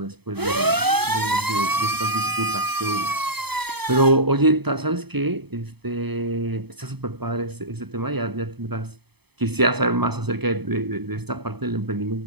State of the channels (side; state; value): left; late; 0.98 ms